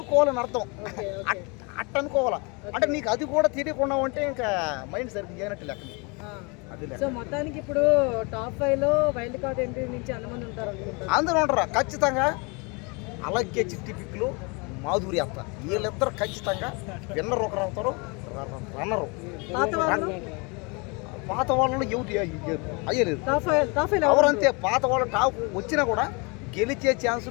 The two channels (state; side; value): quieter; right; 30.3 dB